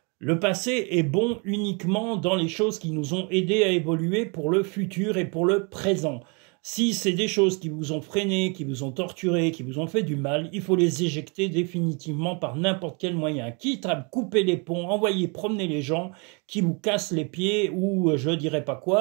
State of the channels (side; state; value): left; quieter; 33.1 dB